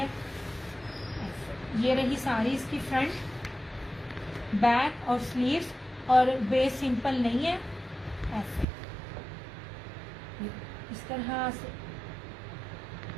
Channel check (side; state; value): left; drops out; at 8.7 s